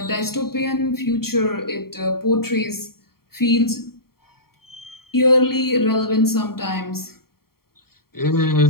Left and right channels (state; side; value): late; right; 0.93 ms